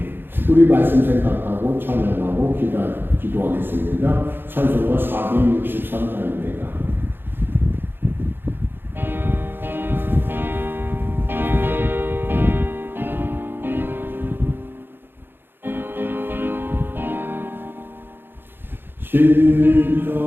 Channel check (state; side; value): late; left; 0.10 ms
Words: 우리 말씀 생각하고 찬양하고 기도하겠습니다. 찬송가 463장입니다. 진짜